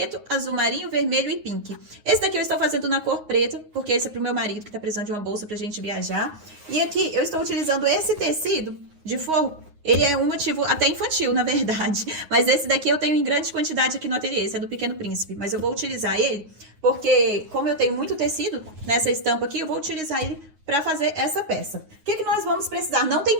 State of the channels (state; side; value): late; left; 9.5 ms